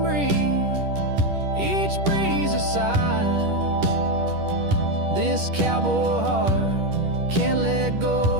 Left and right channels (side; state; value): left; late; 10 ms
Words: each breeze a sigh. This cowboy heart can't let go